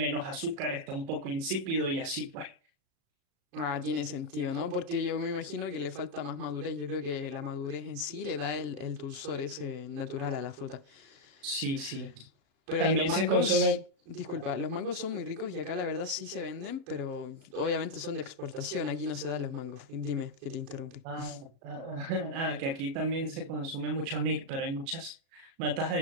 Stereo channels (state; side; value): late; left; 36 ms